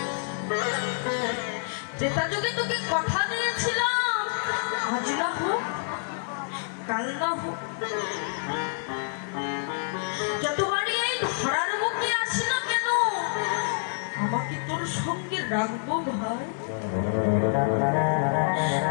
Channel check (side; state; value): right; silent; 60 dB below the other